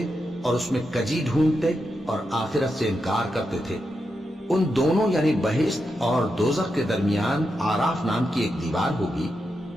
اور اس میں کجی ڈھونڈتے اور آخرت سے انکار کرتے تھے۔ ان دونوں یعنی بہشت اور دوزخ کے درمیان آراف نام کی ایک دیوار ہوگی،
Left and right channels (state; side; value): normal; both; correlation 0.86